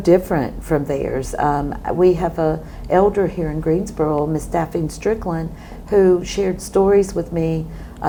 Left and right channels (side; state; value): both; identical; correlation 1.00